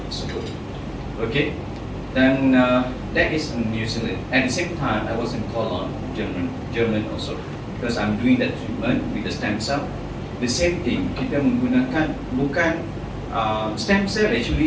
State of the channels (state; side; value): identical; both; correlation 1.00